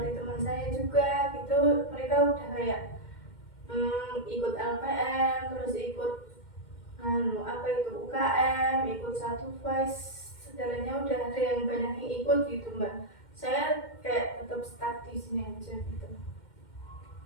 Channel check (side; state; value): right; late; 2.1 ms